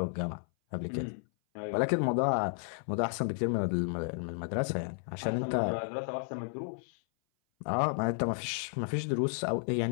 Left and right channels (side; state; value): right; silent; 56 dB below the other